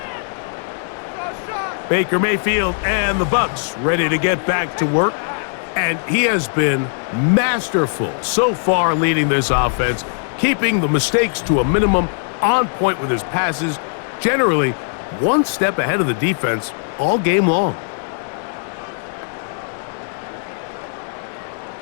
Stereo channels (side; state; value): right; silent; digital silence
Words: Baker Mayfield and the Bucs ready to get back to work. And he has been masterful so far leading this offense, keeping the mistakes to a minimum, on point with his passes, generally one step ahead of the defense all game long.